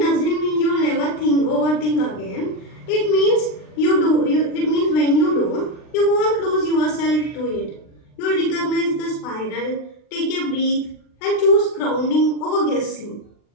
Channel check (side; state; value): right; late; 39 ms